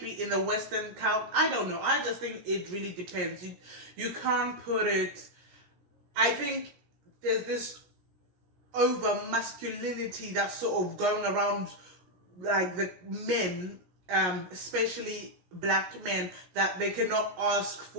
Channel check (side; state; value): left; late; 16 ms